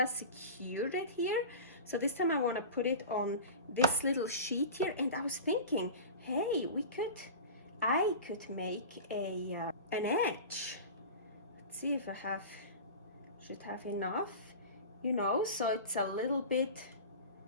secured it here. So this time I want to put it on this little sheet here, and I was thinking, hey, I could make an edge. Let's see if I should have enough, you know, so it's a little bit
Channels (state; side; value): inverted; both; correlation -0.32